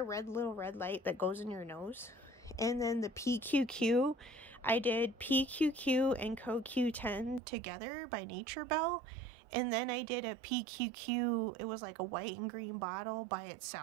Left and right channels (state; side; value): drops out; left; at 7.4 s